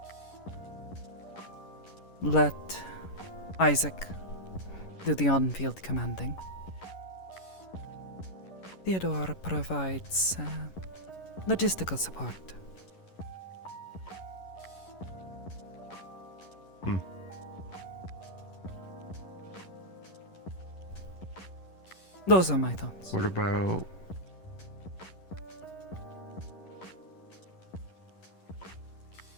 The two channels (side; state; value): right; late; 11 ms